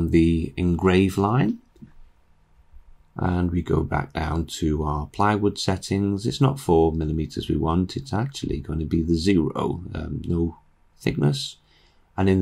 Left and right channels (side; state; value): both; identical; correlation 1.00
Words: the engrave line, And we go back down to our plywood settings. It's not 4 millimeters we want, it's actually going to be the 0, no thickness. And in